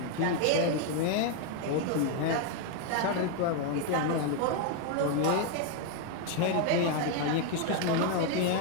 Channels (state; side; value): different; both; correlation 0.01